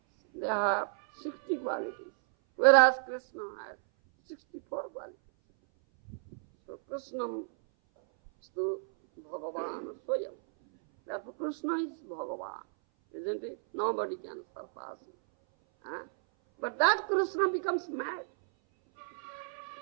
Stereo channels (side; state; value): left; silent; 56 dB below the other